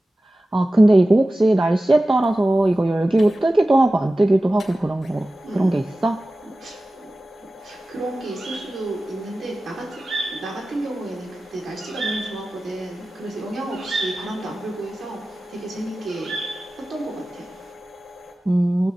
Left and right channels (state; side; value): normal; both; correlation 0.95